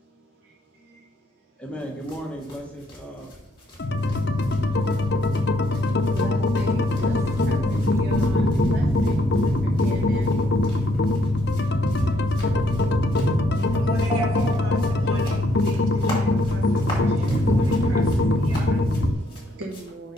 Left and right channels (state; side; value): normal; both; correlation 0.70